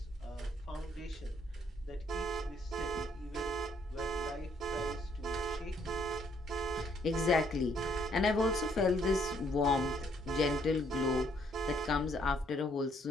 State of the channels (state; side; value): normal; both; correlation 0.68